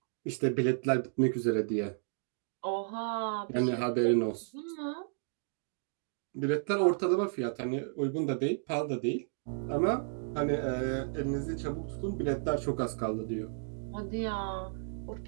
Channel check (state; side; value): silent; left; digital silence